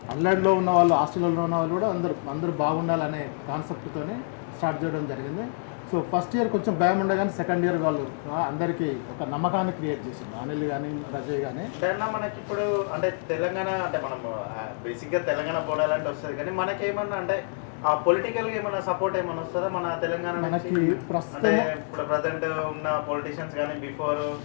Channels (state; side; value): silent; right; digital silence